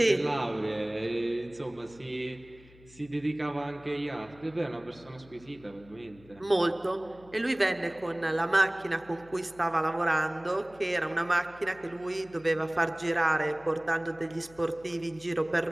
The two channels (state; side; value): noise; left; hum, 24 dB below the sound